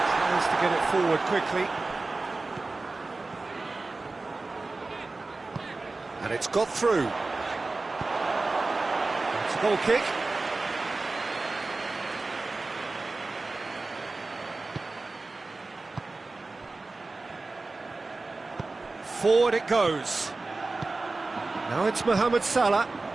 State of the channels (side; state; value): left; quieter; 3.5 dB